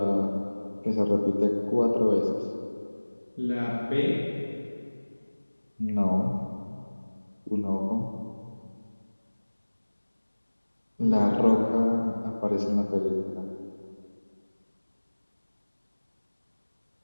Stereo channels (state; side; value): inverted; both; correlation -1.00